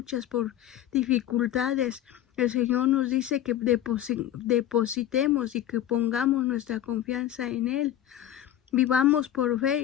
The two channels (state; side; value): quieter; right; 11.8 dB